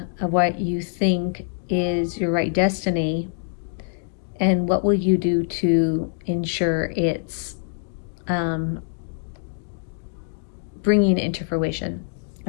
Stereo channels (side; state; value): right; silent; digital silence